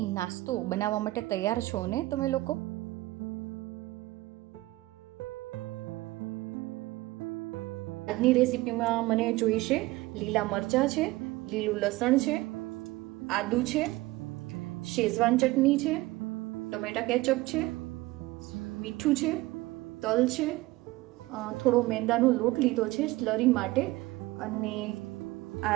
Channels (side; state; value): left; quieter; 19.4 dB